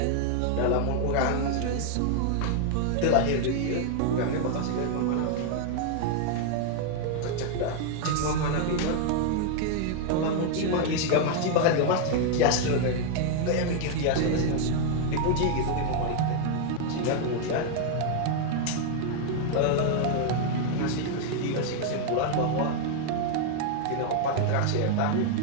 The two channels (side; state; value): both; different; correlation 0.00